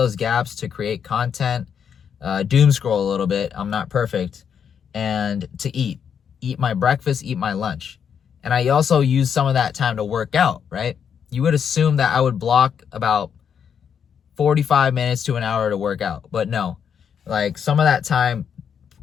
gaps to create content, doom scroll a little bit. I'm not perfect. And to eat. Eat my breakfast, eat my lunch. And I also use some of that time to work out, right? You would assume that I would block about 45 minutes to an hour to work out. But no. Like some of that time,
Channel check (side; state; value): right; quieter; 7.6 dB